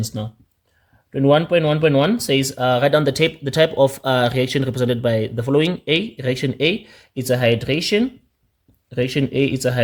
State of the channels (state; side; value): identical; both; correlation 1.00